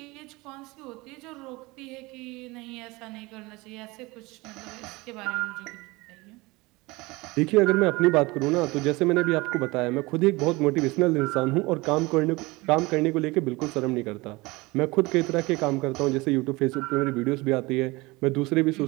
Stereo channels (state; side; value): quieter; left; 22.9 dB